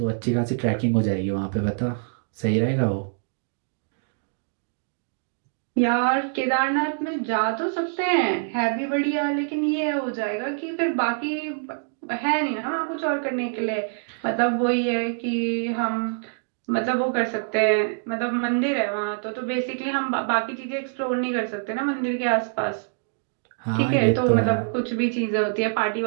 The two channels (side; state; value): left; silent; digital silence